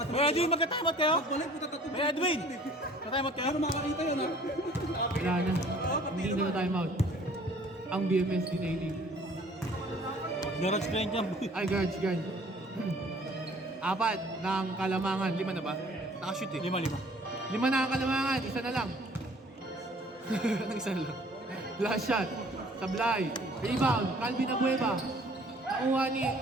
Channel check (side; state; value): both; normal; correlation 0.54